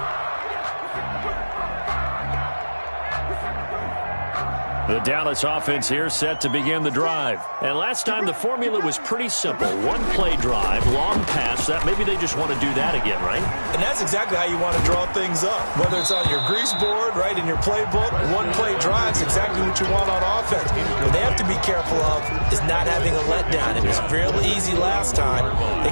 The Dallas offense here set to begin the drive. And last time the formula was pretty simple. One play drive, long pass. That maybe they just want to do that again, right? And that's exactly how you want to draw things up. Whether it's on your grease board, right, in your playbook, one play drive's exactly what you want on offense. What they have to be careful of is not having a letdown. It was real easy last time. They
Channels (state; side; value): inverted; both; correlation -1.00